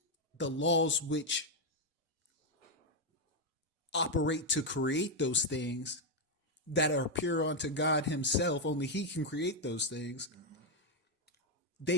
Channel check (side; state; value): both; normal; correlation 0.01